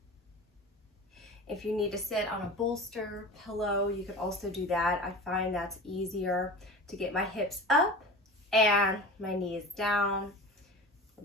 If you need to sit on a bolster, pillow, you could also do that. I find that's easier to get my hips up and my knees down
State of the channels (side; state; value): both; normal; correlation 0.34